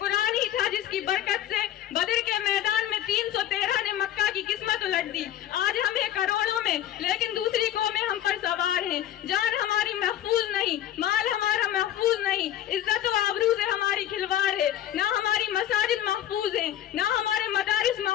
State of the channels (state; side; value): quieter; right; 11.6 dB